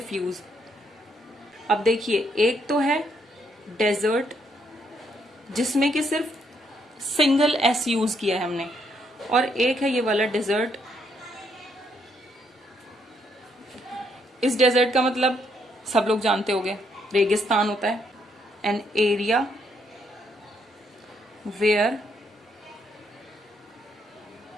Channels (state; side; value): normal; both; correlation 0.73